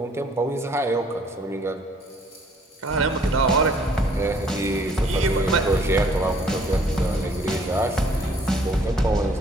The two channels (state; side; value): normal; both; correlation 0.60